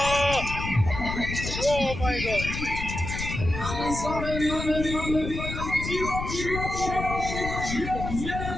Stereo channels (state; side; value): noise; left; rumble, 6 dB below the sound